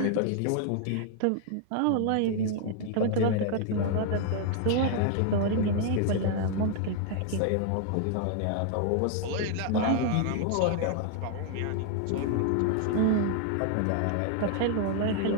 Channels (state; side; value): different; both; correlation 0.00